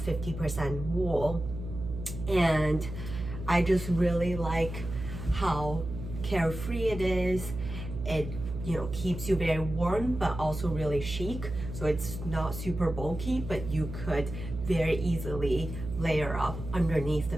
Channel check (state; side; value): noise; right; hum, 8 dB below the sound